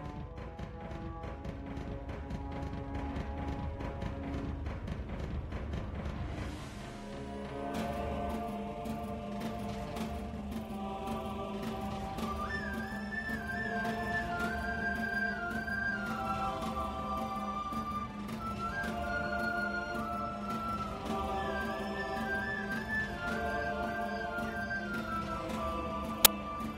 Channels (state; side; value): identical; both; correlation 1.00